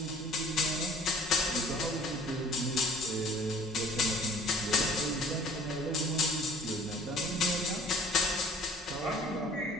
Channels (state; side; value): normal; both; correlation 0.51